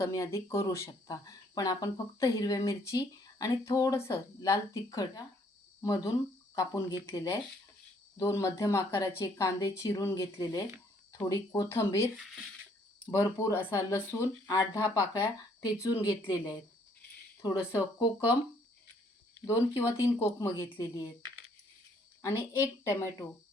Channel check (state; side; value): normal; both; correlation 0.65